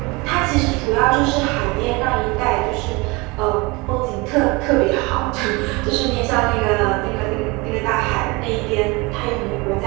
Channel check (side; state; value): left; quieter; 25.6 dB